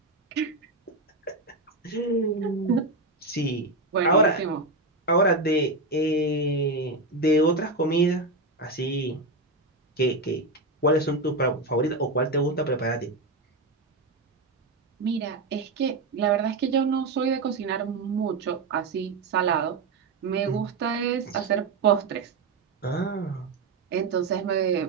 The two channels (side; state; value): left; quieter; 3.3 dB